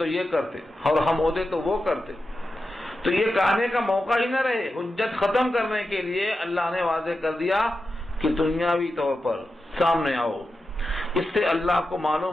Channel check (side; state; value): both; normal; correlation 0.90